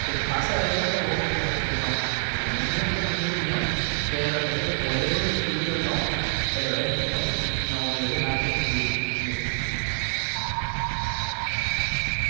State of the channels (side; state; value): left; silent; 56 dB below the other